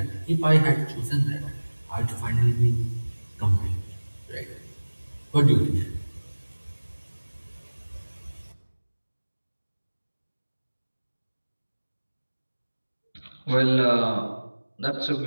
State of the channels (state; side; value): inverted; both; correlation -1.00